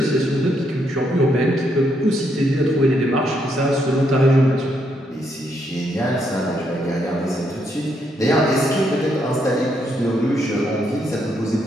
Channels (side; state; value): both; normal; correlation 0.76